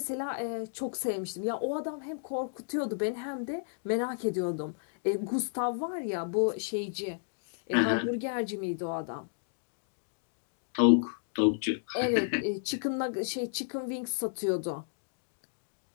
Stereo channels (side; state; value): right; silent; digital silence